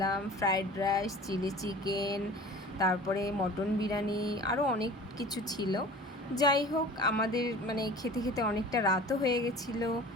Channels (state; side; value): normal; both; correlation 0.42